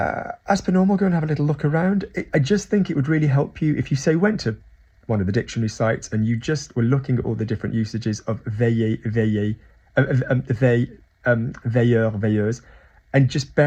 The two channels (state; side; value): identical; both; correlation 1.00